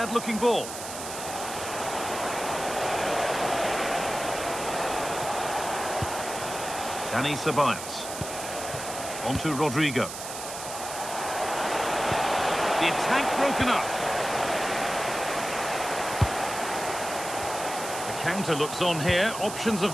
ball. Dani Ceballos. On to Rodrigo. The attack broken up. The counter looks on here. Options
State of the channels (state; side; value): noise; right; hiss, 9 dB below the sound